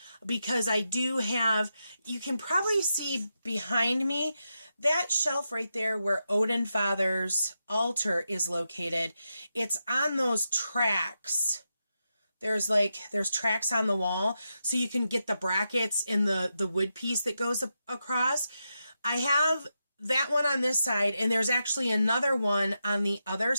because I do have, you can probably see behind me, that shelf right there where Odin Father's altar is located. It's on those tracks. There's tracks on the wall, so you can get the brackets in the wood piece that goes across. I have that one on this side, and there's actually another one on the other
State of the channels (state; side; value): inverted; both; correlation -0.86